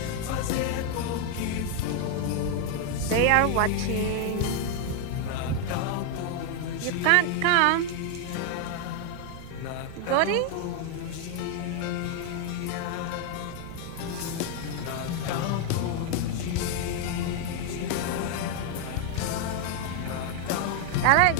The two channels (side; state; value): both; different; correlation 0.01